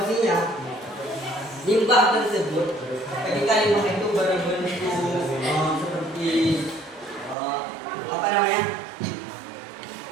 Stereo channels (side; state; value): left; drops out; at 7.4 s